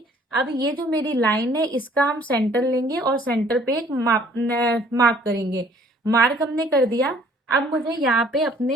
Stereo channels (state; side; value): normal; both; correlation 0.58